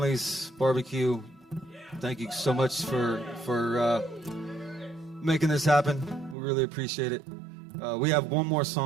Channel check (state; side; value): drops out; left; at 6.4 s